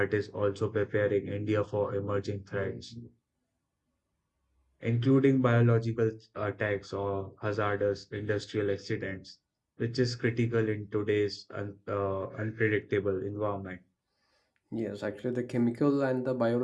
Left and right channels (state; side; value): identical; both; correlation 1.00